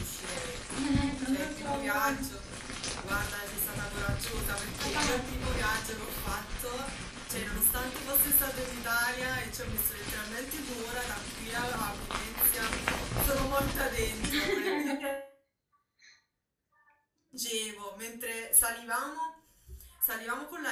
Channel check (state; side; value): identical; both; correlation 1.00